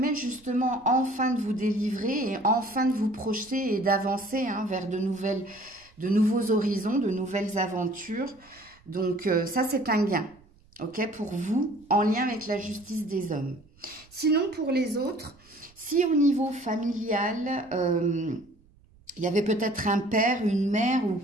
justement enfin de vous délivrer et enfin de vous projeter et d'avancer hein, vers de nouveaux horizons, de nouvelles aventures. Donc ça c'est un gain. Ok, pour vous, en lien avec la justice des hommes. Sinon, pour les autres, si au niveau familial, il y avait peut-être un père, une mère ou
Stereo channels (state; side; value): noise; right; rumble, 29 dB below the sound